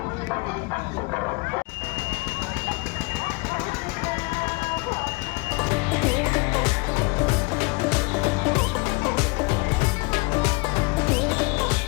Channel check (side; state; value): right; quieter; 27.4 dB